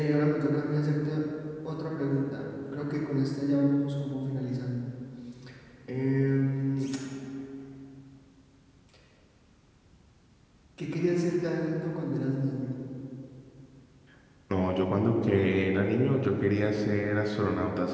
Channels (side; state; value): both; identical; correlation 1.00